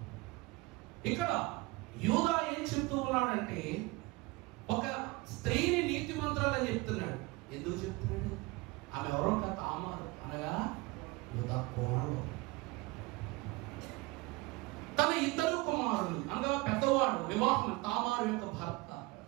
ఇక్కడ యూదా ఏం చెప్తూ ఉన్నాడంటే ఒక స్త్రీని నీతిమంతురాలని చెప్తున్నాడు. ఎందుకు చెప్తున్నాడు? ఆమె ఎవరో తామారు, అనగా యూదా కోడలు. తన ఇద్దరు కుమారులు అనగా పెద్దవాడు వివాహం, తామారు యొక్క భర్త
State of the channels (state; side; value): quieter; left; 23.0 dB